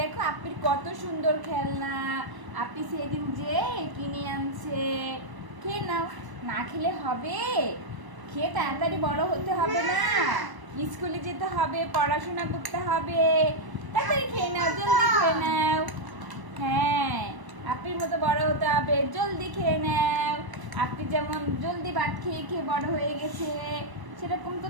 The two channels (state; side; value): late; left; 1.0 ms